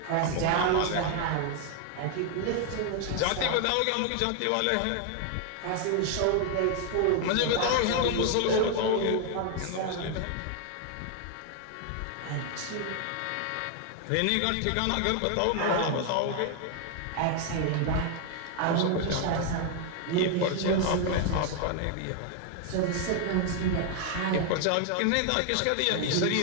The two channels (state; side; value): different; both; correlation 0.00